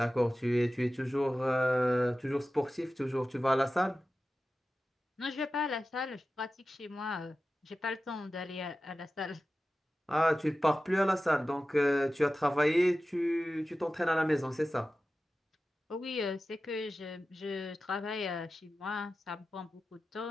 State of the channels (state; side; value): normal; both; correlation 0.94